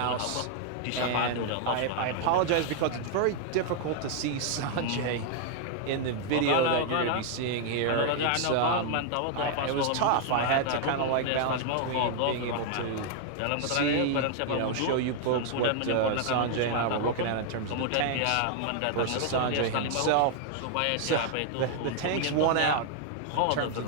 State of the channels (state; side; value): different; both; correlation 0.00